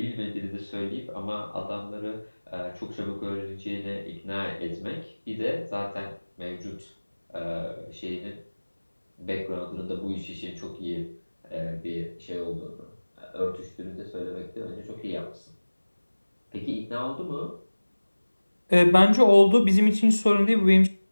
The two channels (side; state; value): both; inverted; correlation -1.00